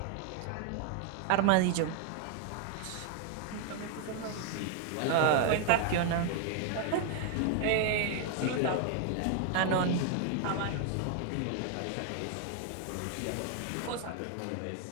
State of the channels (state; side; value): different; both; correlation 0.00